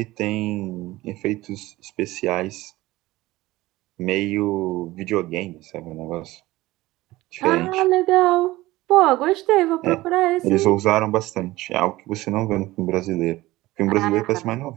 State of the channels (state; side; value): quieter; left; 18.3 dB